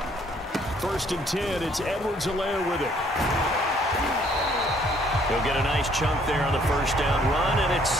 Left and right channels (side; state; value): both; normal; correlation 0.63